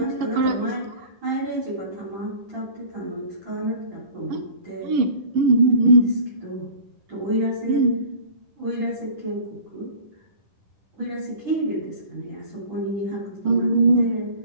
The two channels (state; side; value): late; left; 11 ms